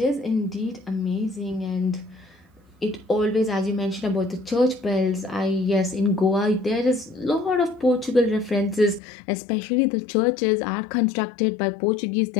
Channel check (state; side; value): drops out; right; at 9.0 s